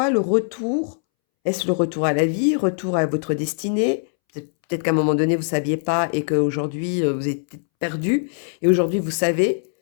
le retour... Est-ce le retour à la vie, retour à votre destinée? Peut-être qu'à un moment donné, vous ne saviez pas et qu'aujourd'hui, vous êtes perdu. Et aujourd'hui, vous savez.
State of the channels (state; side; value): silent; right; 64 dB below the other